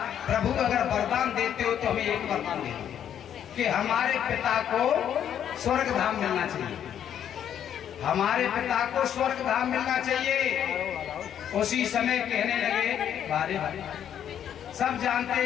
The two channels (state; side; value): quieter; right; 9.5 dB